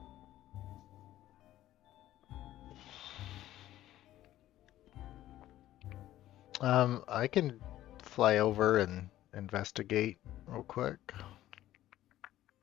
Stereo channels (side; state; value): right; quieter; 13.9 dB